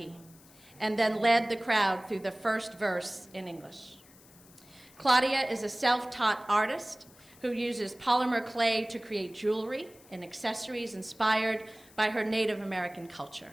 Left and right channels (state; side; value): noise; left; hiss, 25 dB below the sound